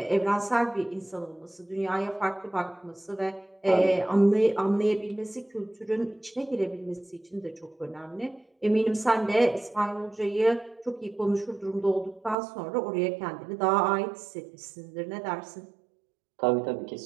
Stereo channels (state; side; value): drops out; left; at 12.4 s